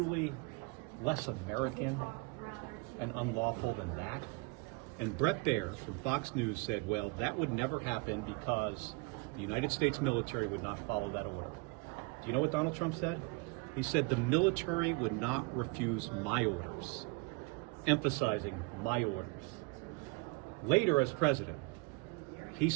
less American and unlawful than that? And Brett Baer from Fox News said, well, that would never happen because the United States military would not follow that order. Do you know what Donald Trump said? He said the military would not refuse my orders, emphasizing my orders. Later, as president, he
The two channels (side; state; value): left; quieter; 26.9 dB